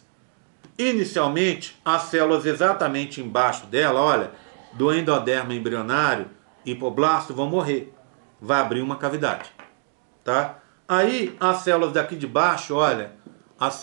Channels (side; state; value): left; silent; 57 dB below the other